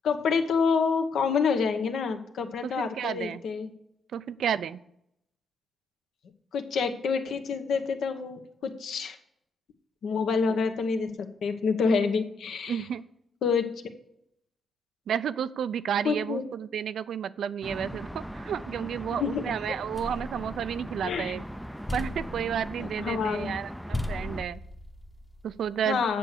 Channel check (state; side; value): normal; both; correlation 0.71